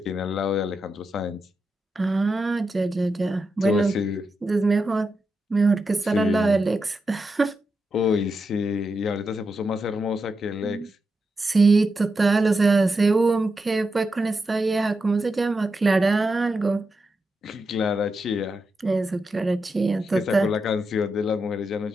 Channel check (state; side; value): normal; both; correlation 0.87